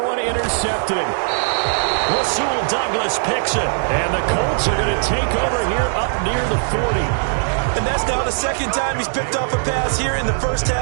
one intercepted. Rasul Douglas picks it. And the Colts are going to take over here up near the 40. And that's now the 2nd time he's picked off a pass here in the 1st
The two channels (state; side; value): silent; left; 66 dB below the other